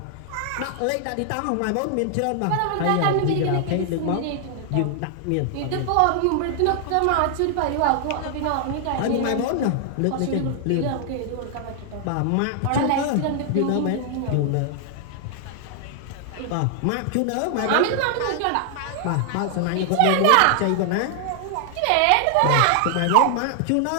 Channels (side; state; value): both; different; correlation 0.00